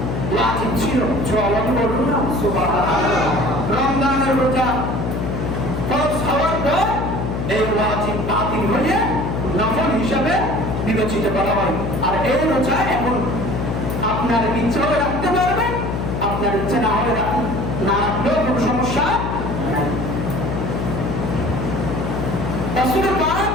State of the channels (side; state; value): left; noise; hum, 2 dB below the sound